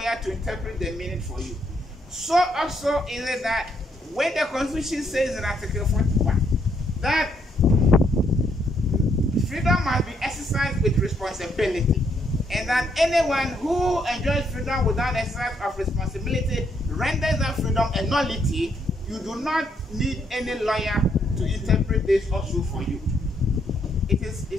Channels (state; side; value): normal; both; correlation 0.73